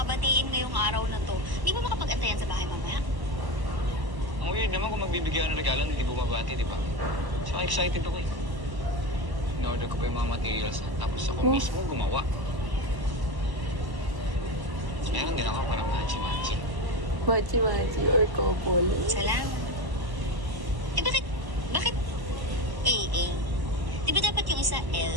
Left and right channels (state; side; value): late; left; 1.1 ms